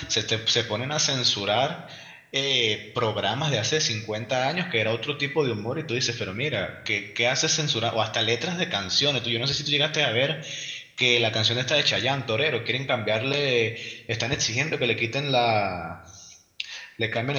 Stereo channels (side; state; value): both; identical; correlation 1.00